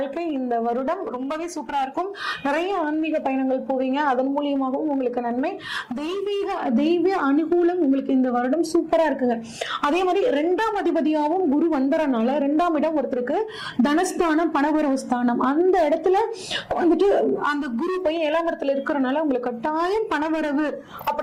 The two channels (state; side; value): identical; both; correlation 1.00